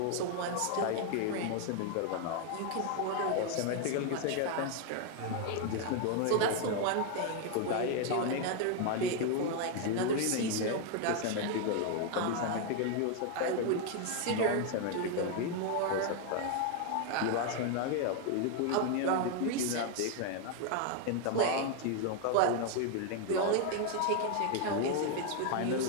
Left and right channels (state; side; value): different; both; correlation 0.01